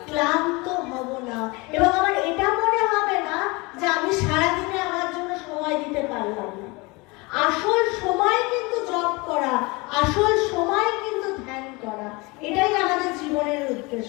ক্লান্ত হব না, এবং আমার এটা মনে হবে না যে আমি সারাদিনে আমার জন্য সময় দিতে পারলাম না। আসল সময় কিন্তু জপ করা, আসল সময় কিন্তু ধ্যান করা, এটাই আমাদের জীবনের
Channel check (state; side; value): quieter; right; 25.6 dB